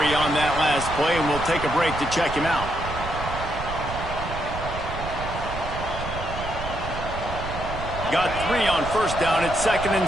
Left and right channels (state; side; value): noise; right; rumble, 8 dB below the sound